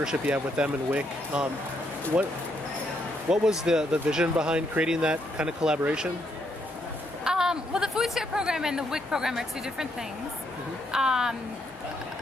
you have with them and WIC, what was the vision behind creating that kind of collaboration? Well, the food share program and the WIC program are two different things.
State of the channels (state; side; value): normal; both; correlation 0.75